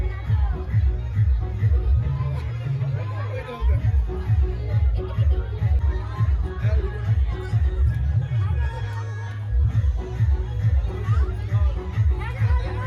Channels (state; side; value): identical; both; correlation 1.00